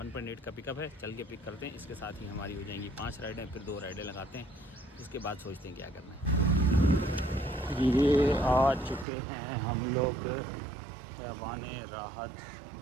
का पिकअप है, चल के पिक करते हैं। इसके साथ ही हमारी हो जाएंगी 5 राइडें, फिर 2 राइडें लगाते हैं, इसके बाद सोचते हैं क्या करना है। ये आ चुके हैं हम लोग रहमान राहत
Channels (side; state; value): left; drops out; at 9.1 s